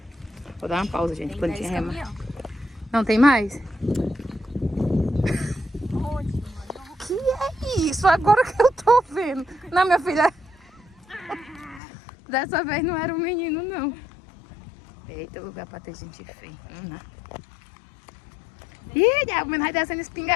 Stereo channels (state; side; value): drops out; right; at 11.8 s